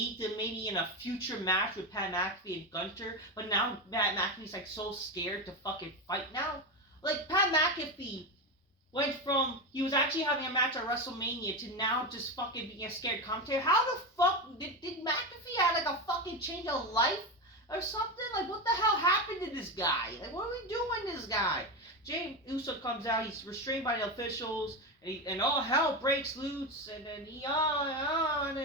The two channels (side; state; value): both; normal; correlation 0.16